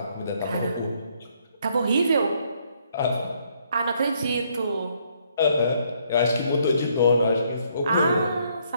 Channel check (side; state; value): both; inverted; correlation -0.69